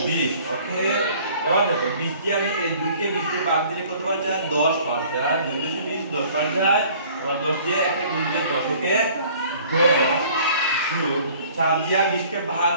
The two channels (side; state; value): both; inverted; correlation -0.52